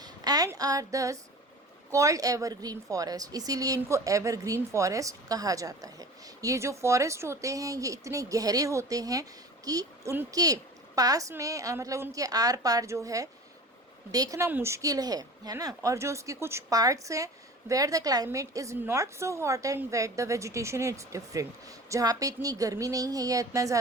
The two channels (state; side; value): normal; both; correlation 0.39